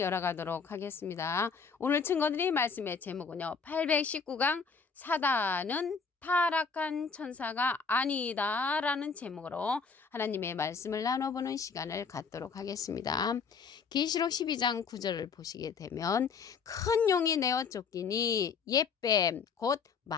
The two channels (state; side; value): quieter; right; 5.4 dB